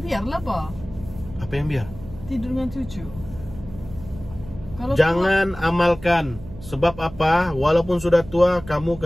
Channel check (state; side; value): noise; right; hum, 16 dB below the sound